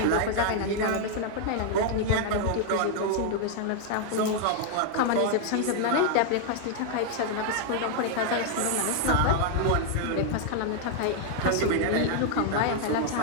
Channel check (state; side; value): different; both; correlation 0.00